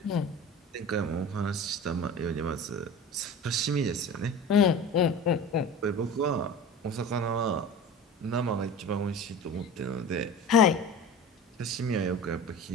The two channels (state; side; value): normal; both; correlation 0.35